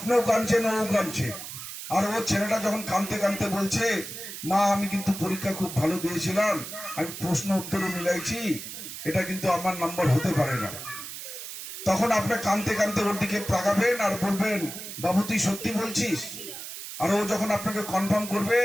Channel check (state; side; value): noise; right; hiss, 9 dB below the sound